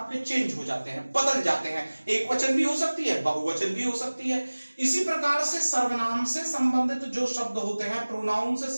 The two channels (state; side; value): inverted; both; correlation -1.00